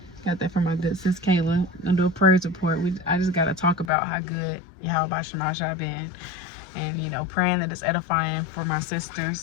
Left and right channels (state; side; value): drops out; right; at 3.9 s